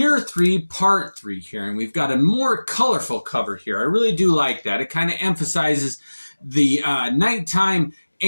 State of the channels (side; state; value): both; inverted; correlation -1.00